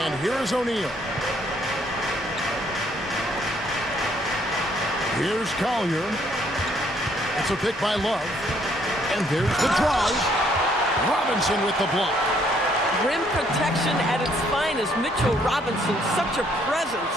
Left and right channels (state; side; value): normal; both; correlation 0.67